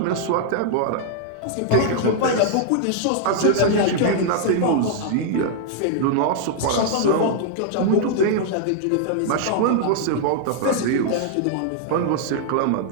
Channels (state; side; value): different; both; correlation -0.01